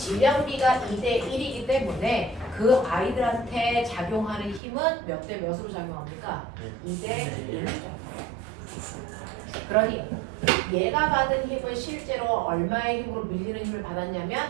B가 2대 1이기 때문에 그 아이들한테 작용하는 힘은 몇 대 몇으로 작용합니까? 2대 1로 작용합니다. 그러니 얘가 받은 힘은 실제로 얼마의 힘으로 밀리는 힘을 받았냐면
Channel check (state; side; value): drops out; left; at 4.6 s